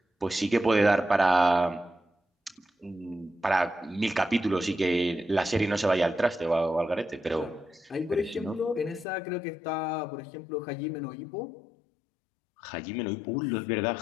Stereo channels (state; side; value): drops out; right; at 9.1 s